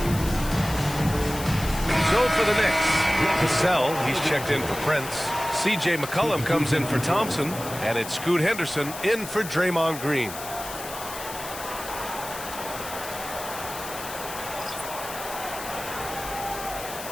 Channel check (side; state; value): left; noise; hiss, 11 dB below the sound